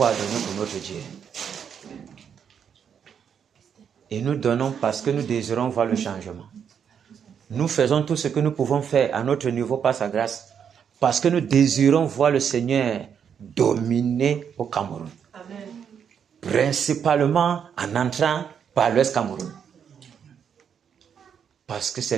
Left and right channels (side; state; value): left; quieter; 7.7 dB